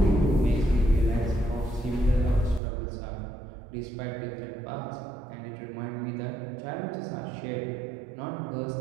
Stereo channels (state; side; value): drops out; left; at 2.6 s